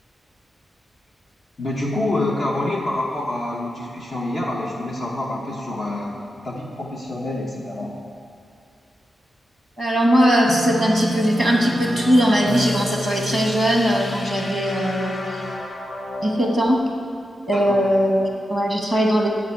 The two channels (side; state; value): both; normal; correlation 0.88